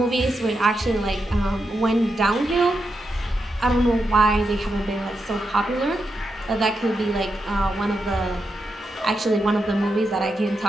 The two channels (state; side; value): normal; both; correlation 0.86